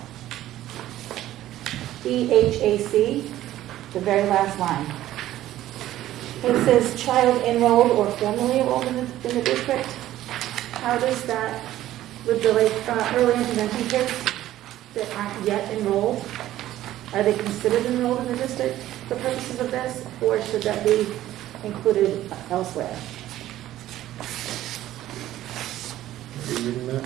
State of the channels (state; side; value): quieter; left; 13.9 dB